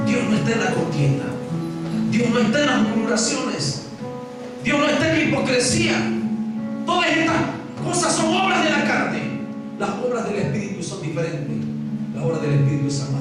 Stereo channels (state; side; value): identical; both; correlation 1.00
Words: Dios no está en la contienda, Dios no está en las murmuraciones, Dios no está en la hipocresía. Todas estas cosas son obras de la carne. Las obras del Espíritu son diferentes. La obra del Espíritu es